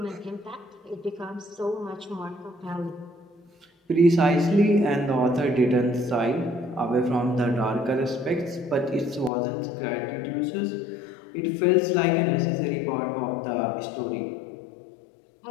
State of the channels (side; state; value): right; drops out; at 9.3 s